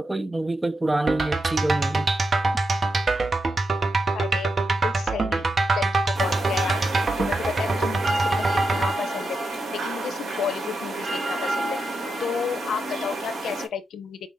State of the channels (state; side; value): normal; both; correlation 0.86